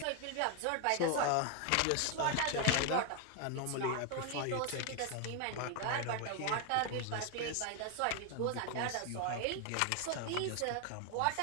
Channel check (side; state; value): both; different; correlation 0.01